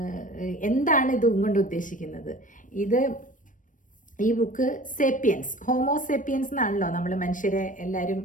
എന്താണ് ഇത് കൊണ്ട് ഉദ്ദേശിക്കുന്നത്. ഈ ബുക്ക് സേപ്പിയൻസ്, ഹോമോസേപ്പിയൻസ് എന്നാണല്ലോ നമ്മൾ മനുഷ്യരെ എല്ലാവരും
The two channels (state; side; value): late; right; 0.38 ms